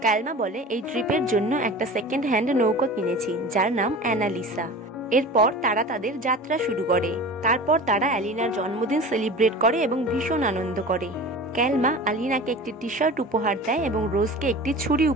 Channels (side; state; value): both; normal; correlation 0.36